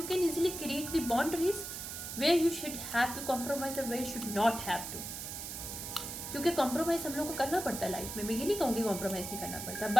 can easily create the boundaries where you should have to compromise और where you should not have to. क्योंकि कॉम्प्रोमाइज़ हम लोग को करना पड़ता है लाइफ में, मैं ये नहीं कहूँगी कॉम्प्रोमाइज़ नहीं करना पड़ता,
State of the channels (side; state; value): right; noise; hiss, 7 dB below the sound